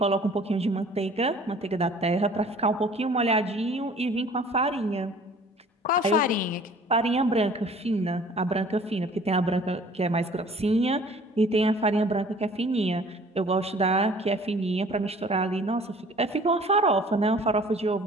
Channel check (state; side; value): normal; both; correlation 0.51